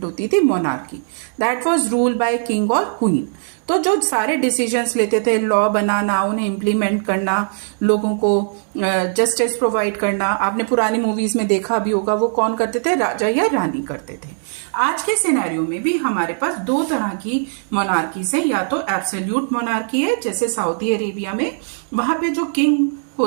होती थी? Monarchy. That was rule by king और क्वीन। तो जो सारे डिसीजंस लेते थे, लॉ बनाना, उन्हें इम्प्लीमेंट करना, लोगों को जस्टिस प्रोवाइड करना, आपने पुरानी मूवीज में देखा भी होगा, वो कौन करते थे? राजा या रानी करते थे। आज के सिनेरियो में भी हमारे पास दो तरह की मोनार्कीज है। या तो एब्सोल्यूट मोनार्की है, जैसे सऊदी अरेबिया में, वहां पे जो किंग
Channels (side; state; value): left; silent; digital silence